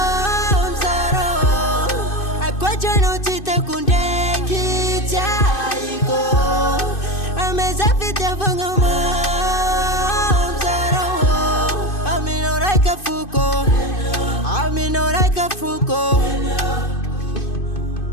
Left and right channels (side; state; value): right; late; 2.6 ms